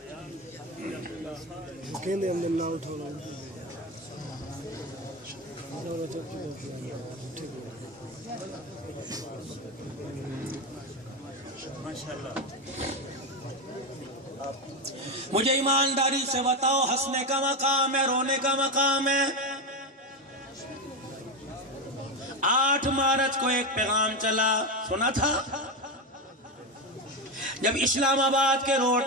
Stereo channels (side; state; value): both; normal; correlation 0.13